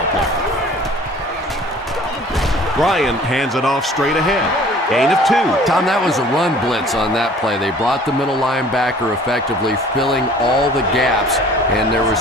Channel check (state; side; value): normal; both; correlation 0.50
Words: play. Ryan hands it off straight ahead. Gain of 2. Tom, that was a run blitz on that play. They brought the middle linebacker effectively filling all the gaps, and there was